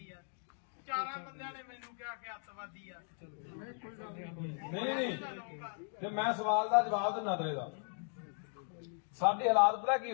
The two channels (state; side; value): silent; right; 53 dB below the other